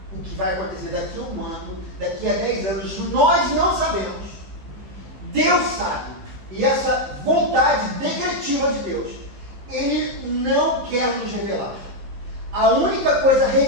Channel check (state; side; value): late; left; 15 ms